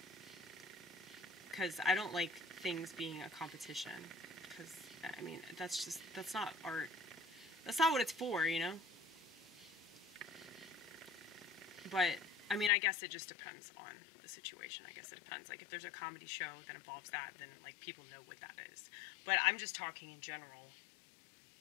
Because I don't like things being a competition. Because, I mean, that's not art. That's not what it's for, you know? But, I mean, I guess it just depends on the situation. I guess it depends. Like, if there's a comedy show that involves that, then, like, people know what that is. But I'm just talking in general.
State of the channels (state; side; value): drops out; right; at 12.7 s